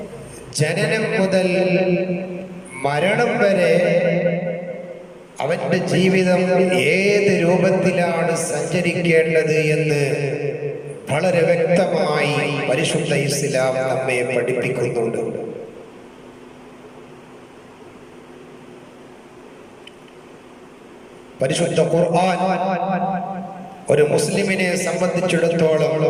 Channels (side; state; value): both; identical; correlation 1.00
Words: ജനനം മുതൽ മരണം വരെ അവന്റെ ജീവിതം ഏത് രൂപത്തിലാണ് സഞ്ചരിക്കേണ്ടത് എന്ന് വളരെ വ്യക്തമായി പരിശുദ്ധ ഇസ്ലാം നമ്മെ പഠിപ്പിക്കുന്നുണ്ട്. പരിശുദ്ധ ഖുർആൻ ഒരു മുസ്ലിമിനെ സംബന്ധിച്ചിടത്തോളം